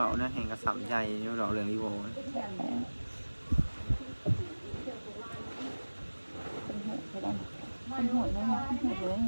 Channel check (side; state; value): both; inverted; correlation -1.00